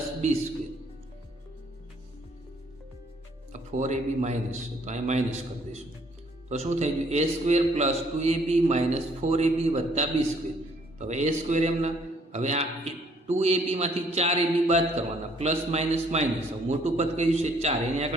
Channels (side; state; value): both; normal; correlation 0.64